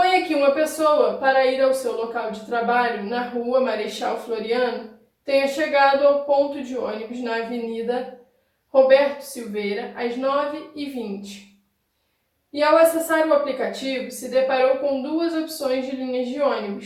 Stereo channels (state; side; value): identical; both; correlation 1.00